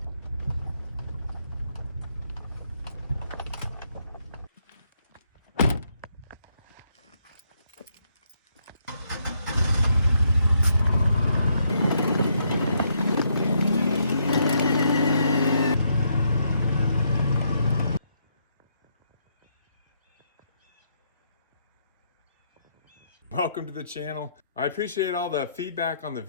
Welcome to the channel. I appreciate all the feedback on the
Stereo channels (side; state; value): both; inverted; correlation -0.76